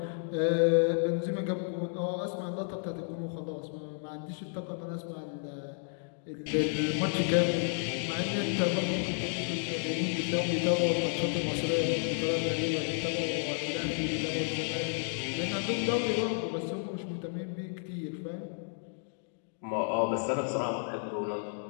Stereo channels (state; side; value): silent; right; 57 dB below the other